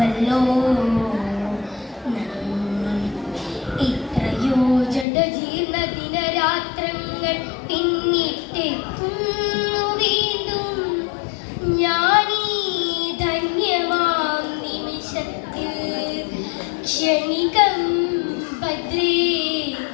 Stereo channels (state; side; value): drops out; right; at 5.1 s